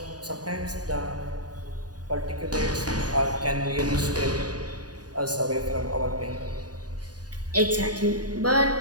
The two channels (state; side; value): late; left; 0.68 ms